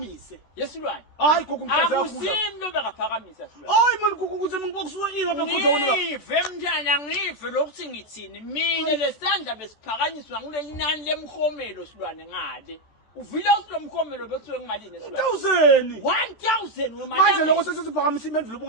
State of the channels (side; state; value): right; late; 14 ms